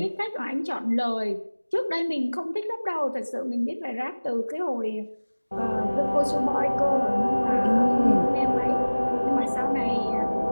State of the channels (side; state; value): both; inverted; correlation -1.00